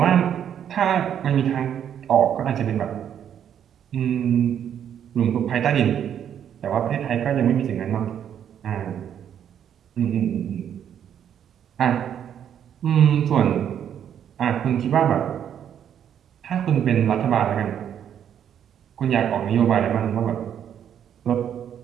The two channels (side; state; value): left; quieter; 9.3 dB